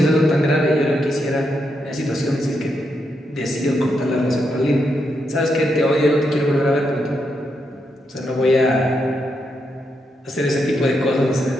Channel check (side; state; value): both; normal; correlation 0.82